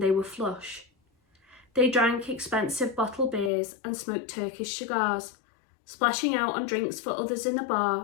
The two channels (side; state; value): right; drops out; at 3.5 s